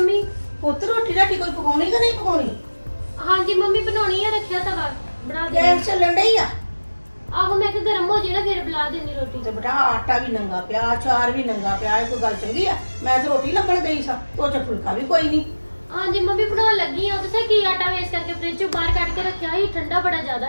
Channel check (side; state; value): both; inverted; correlation -1.00